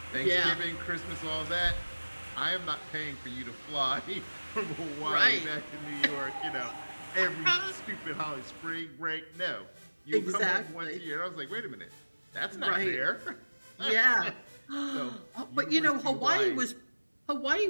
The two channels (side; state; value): both; inverted; correlation -1.00